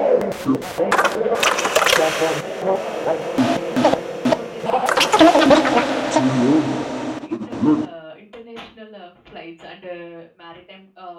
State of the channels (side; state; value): both; identical; correlation 1.00